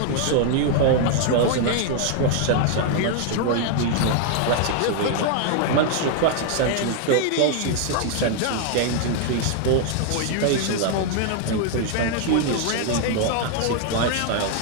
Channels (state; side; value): different; both; correlation 0.00